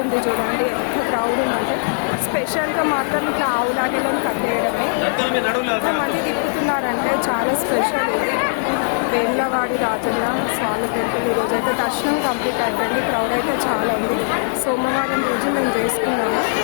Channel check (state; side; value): silent; right; digital silence